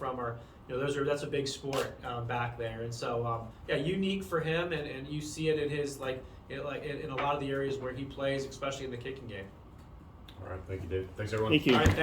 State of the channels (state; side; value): identical; both; correlation 1.00